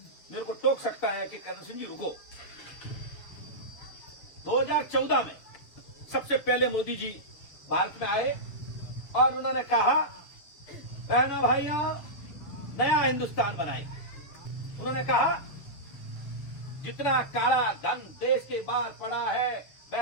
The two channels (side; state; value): right; late; 7.1 ms